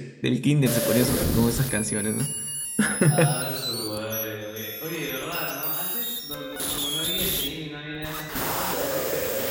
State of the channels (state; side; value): identical; both; correlation 1.00